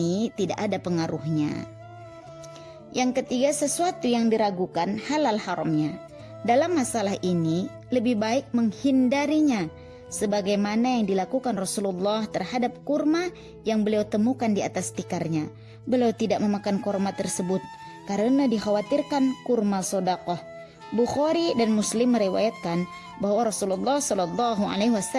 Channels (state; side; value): identical; both; correlation 1.00